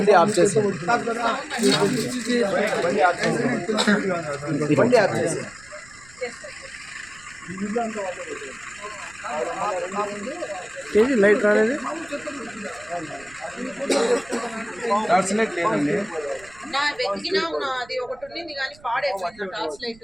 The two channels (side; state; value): right; noise; rumble, 25 dB below the sound